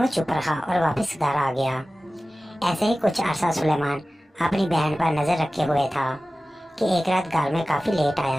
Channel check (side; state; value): both; normal; correlation 0.96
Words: वो चुप रहा और वापस घर आ गया। ऐसे ही कुछ अरसा सुलेमान अपनी बहन पर नजर रखे हुए था कि एक रात घर में काफी लेट